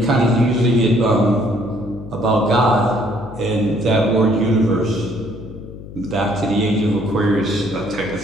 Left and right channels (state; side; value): noise; left; hum, 15 dB below the sound